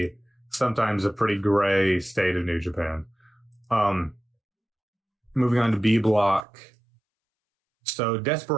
sometimes a pretty gray state of New Japan. Moving on to B block. So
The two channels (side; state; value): left; drops out; at 6.5 s